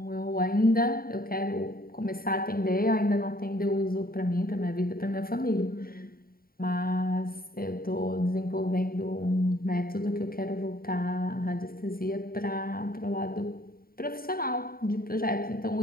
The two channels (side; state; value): right; late; 0.43 ms